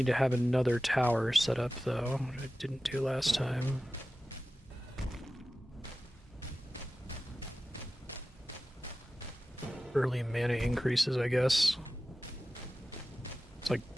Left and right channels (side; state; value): both; normal; correlation 0.95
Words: to have another tower set up though, which I didn't do last time. Early mana increases, I guess. It's like